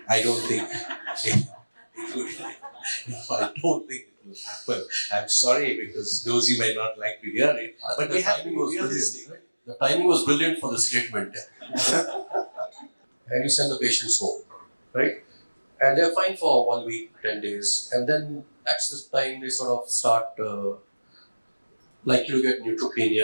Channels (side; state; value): both; inverted; correlation -1.00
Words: I don't think it would. I don't think it will happen. I'm sorry because Dozy might not like to hear it, but the timing was brilliant. Right? The timing was brilliant for the statement. And you send the patients home, right? And they're fine for 1 week, 10 days, and then that's the time they sort of start likely to get